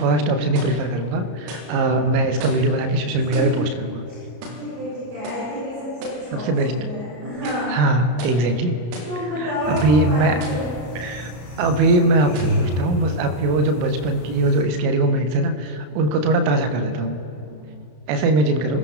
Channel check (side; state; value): left; late; 33 ms